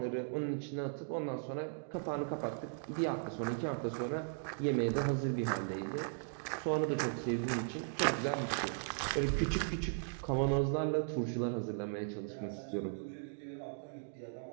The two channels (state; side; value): silent; left; digital silence